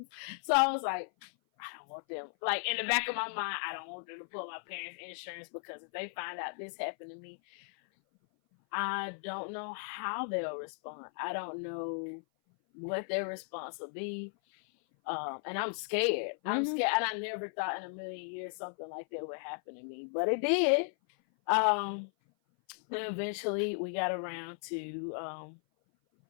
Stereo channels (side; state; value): right; silent; 54 dB below the other